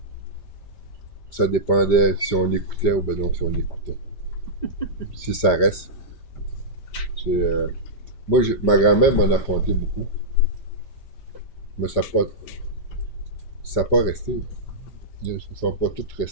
ça dépendait si on écoutait ou ben non si on écoutait. Si ça reste. Moi, ma grand-mère m'en a conté beaucoup, mais ça n'a pas resté. Ils ne sont pas tous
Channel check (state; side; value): late; right; 5.1 ms